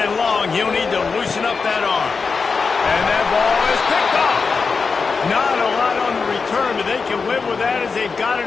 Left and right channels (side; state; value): right; quieter; 4.9 dB